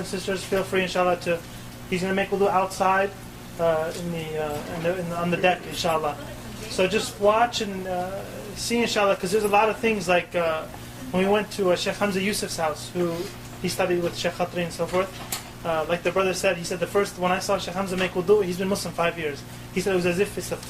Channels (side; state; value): both; identical; correlation 1.00